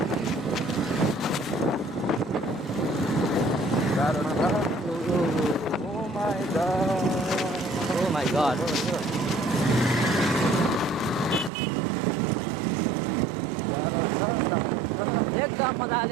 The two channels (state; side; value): drops out; left; at 11.5 s